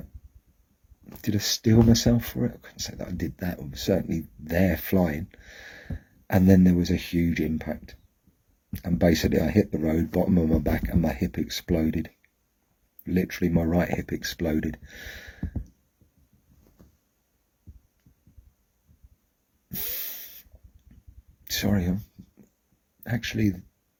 Did I steel myself for it? I couldn't say that I did that. I was certainly there flying. And then there was a huge impact. And basically I hit the road, bottom of my back, and my hip exploded. Literally my right hip exploded. Sorry, actually,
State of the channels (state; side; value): identical; both; correlation 1.00